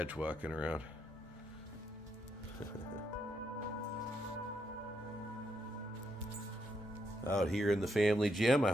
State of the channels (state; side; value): normal; both; correlation 0.79